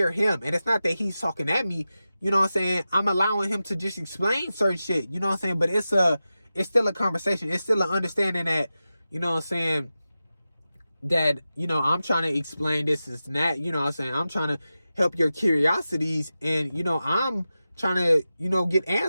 him. And it's not that he's talking at me, you know what I'm saying? I'm allowing him to just explain certain shit, you know what I'm saying? But it's still a conversation. It's still an understanding that, you know what I'm saying, that, you know, I'm trying to explain this and that, you know what I'm saying? I'm trying to help your curiosities, and, you know, I'm trying to, you know, get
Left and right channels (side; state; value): both; inverted; correlation -0.93